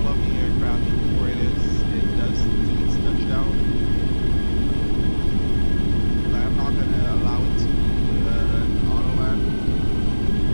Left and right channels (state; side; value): inverted; both; correlation -1.00